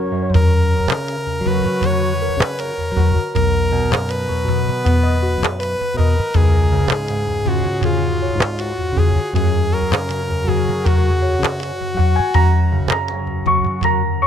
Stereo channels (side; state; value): both; normal; correlation 0.74